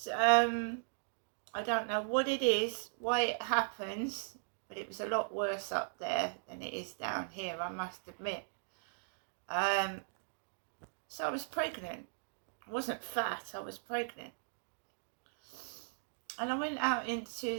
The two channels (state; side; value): silent; left; digital silence